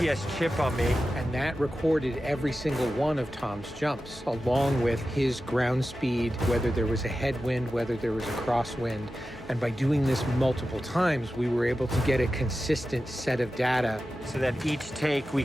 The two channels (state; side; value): normal; both; correlation 0.93